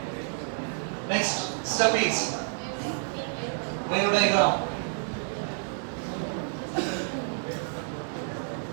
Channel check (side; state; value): left; silent; 57 dB below the other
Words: next step is wave diagram.